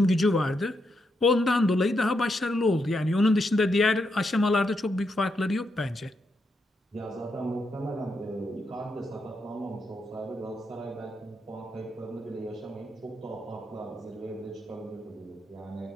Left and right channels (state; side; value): normal; both; correlation 0.82